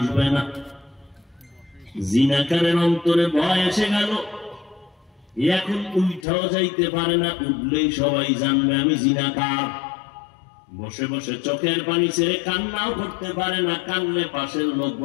না। জিনাকারের অন্তরে ভয় এসে গেল, এখন উঠাও যাইতে পারে না, উঠলেই সবাই জানবে আমি জিনাকার। বসে বসে চোখের পানি ছেড়ে কান্নাও করতে পারে না, কান্নে পাশের লোক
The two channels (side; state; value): right; drops out; at 6.2 s